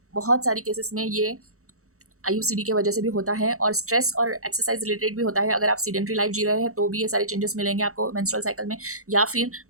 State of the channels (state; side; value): late; left; 0.64 ms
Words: बहुत सारी केसेस में ये IUCD के वजह से भी होता है और स्ट्रेस और एक्सरसाइज रिलेटेड भी होता है। अगर आप सीडेंट्री लाइफ जी रहे हैं तो भी ये सारे चेंजेस मिलेंगे आपको मेंस्ट्रुअल साइकिल में। या फिर